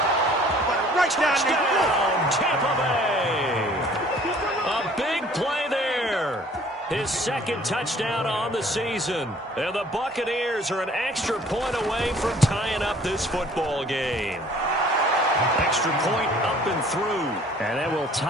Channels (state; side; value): normal; both; correlation 0.54